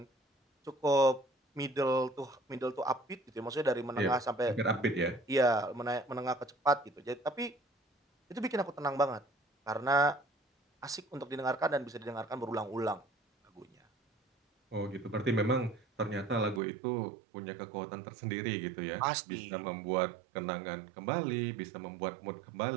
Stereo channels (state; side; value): drops out; left; at 16.6 s